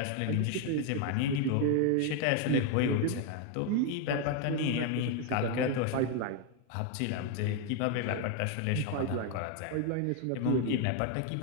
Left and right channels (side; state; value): both; different; correlation 0.01